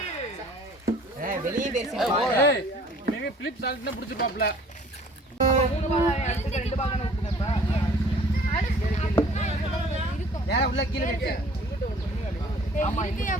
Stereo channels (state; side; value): normal; both; correlation 0.53